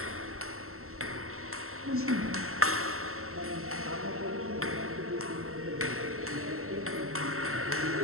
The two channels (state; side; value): late; left; 0.63 ms